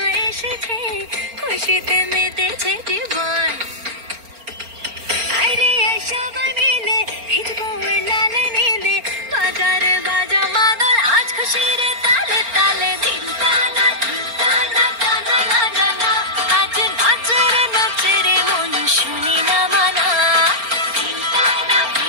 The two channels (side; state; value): left; late; 4.4 ms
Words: এসেছে খুশিতে মেতেছে জীবন আরে সবাই মিলে ভিজবো লাল নীলে বাজার বাজা মাদল আজ খুশির তালে তালে দিন টানা টানা না না না আজ নাচে রে মন শুনি না মানা দিন টানা